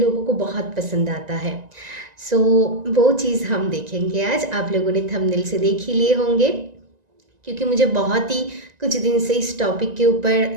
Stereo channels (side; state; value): left; late; 1.9 ms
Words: को बहुत पसंद आता है। सो वो चीज़ हम देखेंगे आज। आप लोगों ने थंबनेल से देख ही लिए होंगे, क्योंकि मुझे बहुत ही कुछ दिन से इस टॉपिक के ऊपर